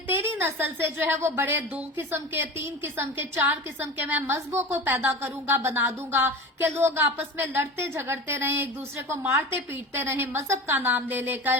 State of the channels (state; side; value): normal; both; correlation 0.32